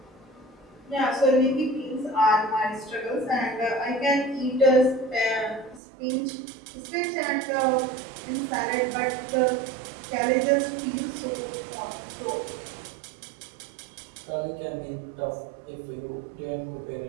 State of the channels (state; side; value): drops out; left; at 5.8 s